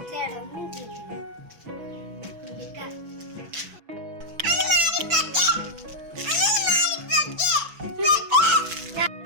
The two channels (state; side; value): late; left; 6.1 ms